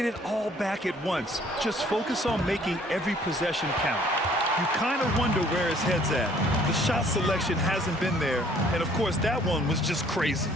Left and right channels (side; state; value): both; normal; correlation 0.58